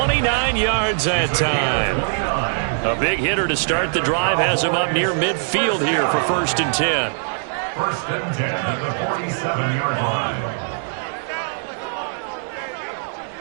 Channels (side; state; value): left; silent; digital silence